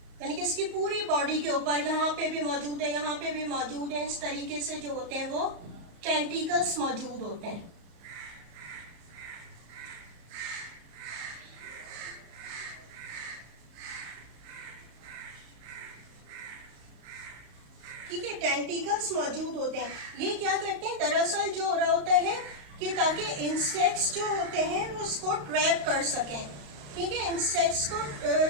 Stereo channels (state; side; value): late; left; 34 ms